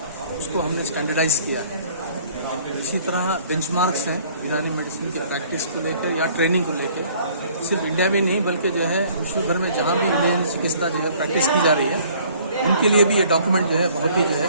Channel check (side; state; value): both; inverted; correlation -0.56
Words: उसको हमने स्टैंडर्डाइज किया है। इसी तरह बेंचमार्क्स हैं यूनानी मेडिसिन की प्रैक्टिस को लेकर या ट्रेनिंग को लेकर, सिर्फ इंडिया में नहीं बल्कि जो है विश्व भर में जहाँ भी यूनानी चिकित्सा जो है प्रैक्टिस की जा रही है उनके लिए भी ये डॉक्यूमेंट जो है बहुत ही जो है